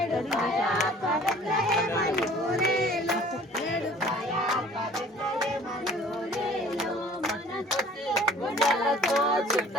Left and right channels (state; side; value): normal; both; correlation 0.50